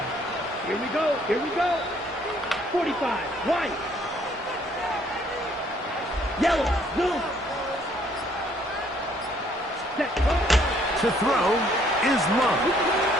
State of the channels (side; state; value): both; normal; correlation 0.64